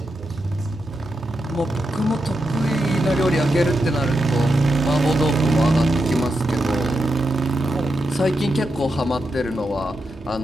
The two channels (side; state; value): both; normal; correlation 0.86